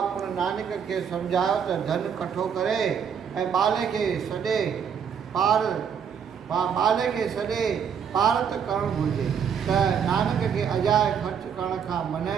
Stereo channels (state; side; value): quieter; left; 7.5 dB